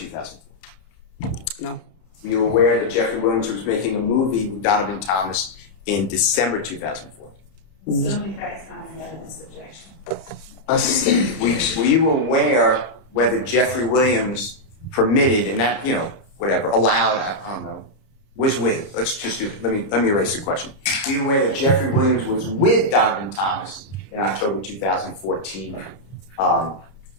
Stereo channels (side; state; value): right; late; 31 ms